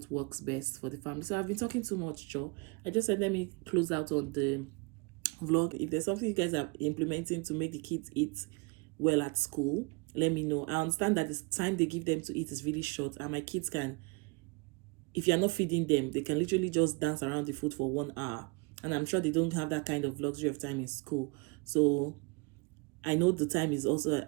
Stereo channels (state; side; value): quieter; left; 30.1 dB